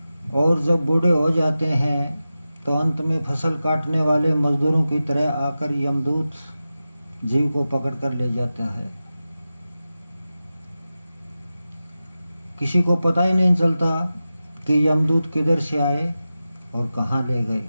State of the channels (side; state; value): both; inverted; correlation -0.94